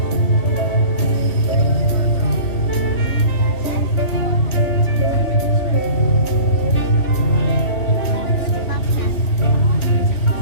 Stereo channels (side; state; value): right; late; 3.1 ms